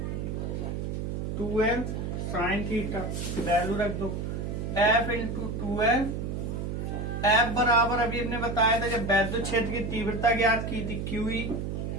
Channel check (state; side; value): noise; right; hum, 3 dB below the sound